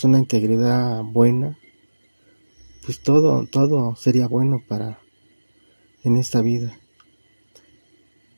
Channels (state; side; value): inverted; both; correlation -1.00